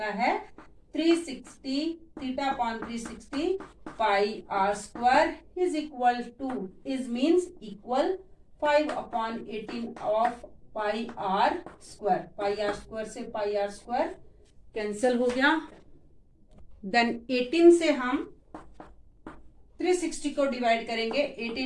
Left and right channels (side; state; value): both; identical; correlation 1.00